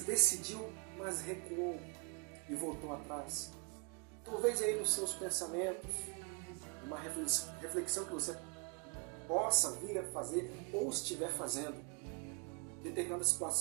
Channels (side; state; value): left; quieter; 30.5 dB